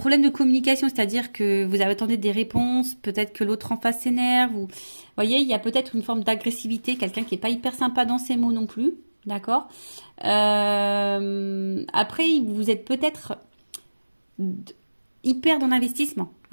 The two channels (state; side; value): inverted; both; correlation -1.00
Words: de communication, c'est-à-dire que vous attendez des réponses, peut-être que l'autre en face s'énerve. Vous voyez, il y a peut-être une forme d'agressivité, quelqu'un qui n'est pas hyper sympa dans ses mots non plus. D'accord. Après, vous êtes peut-être hyper dans l'investissement.